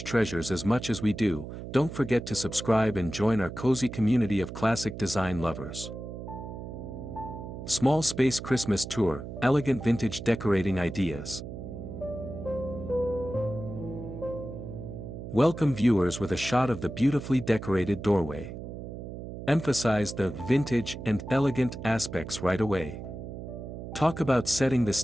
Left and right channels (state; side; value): noise; right; hum, 9 dB below the sound